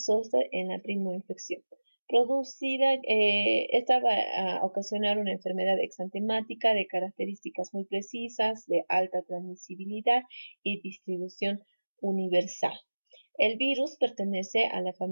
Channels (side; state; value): both; inverted; correlation -1.00